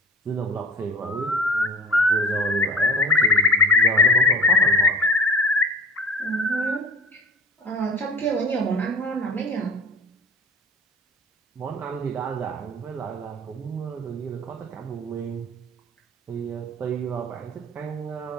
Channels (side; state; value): both; normal; correlation 0.37